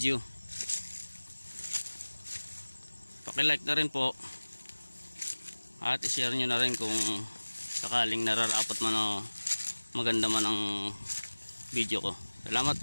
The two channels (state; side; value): inverted; both; correlation -1.00